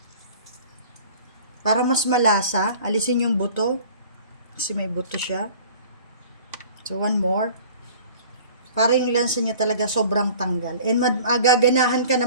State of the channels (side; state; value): both; inverted; correlation -0.46